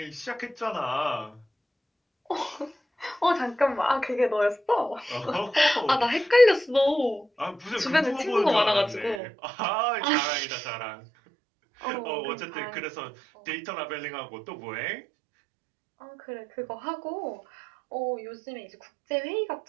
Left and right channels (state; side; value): drops out; left; at 9.2 s